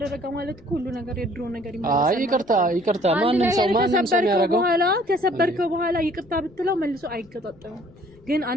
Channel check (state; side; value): noise; left; rumble, 27 dB below the sound